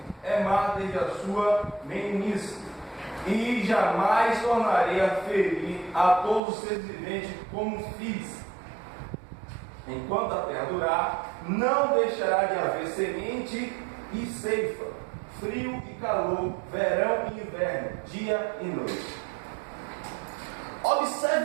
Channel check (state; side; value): drops out; left; at 6.4 s